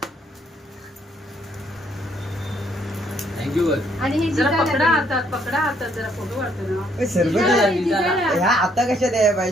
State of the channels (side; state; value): both; normal; correlation 0.69